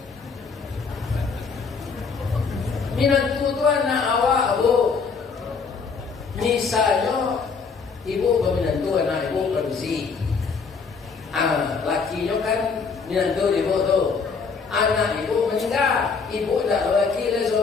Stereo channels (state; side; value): quieter; right; 5.2 dB